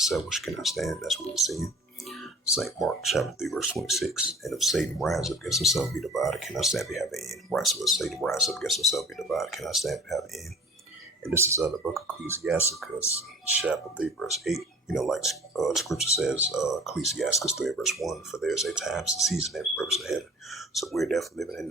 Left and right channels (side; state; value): both; normal; correlation 0.46